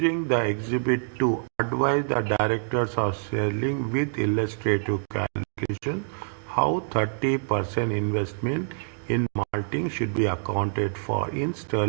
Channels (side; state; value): left; silent; 61 dB below the other